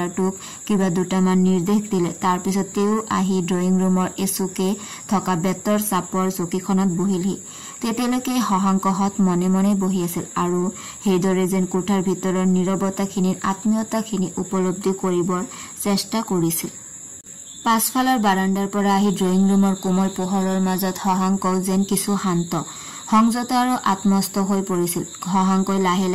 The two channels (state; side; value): identical; both; correlation 1.00